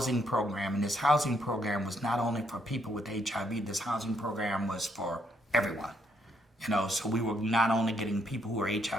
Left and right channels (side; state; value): both; normal; correlation 0.73